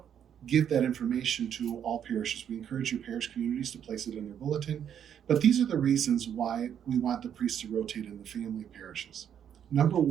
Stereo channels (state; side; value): quieter; left; 9.0 dB